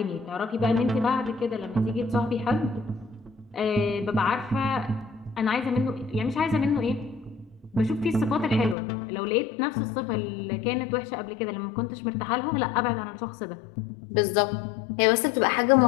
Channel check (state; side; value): drops out; right; at 8.8 s